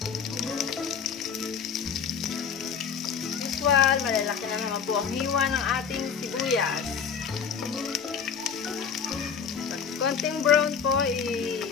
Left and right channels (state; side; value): quieter; right; 6.8 dB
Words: Usual, malalaki na naman po ang hiwa ng ating sibuyas. Pag konting brown po,